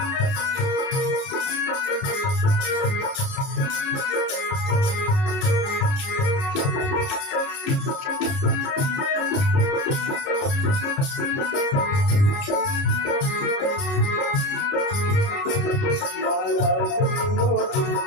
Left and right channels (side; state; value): right; late; 30 ms